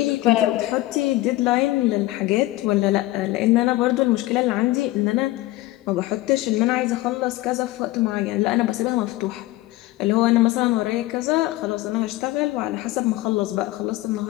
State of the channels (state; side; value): quieter; right; 17.7 dB